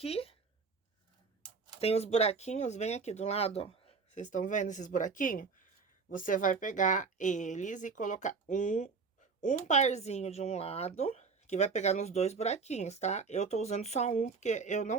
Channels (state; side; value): quieter; left; 4.9 dB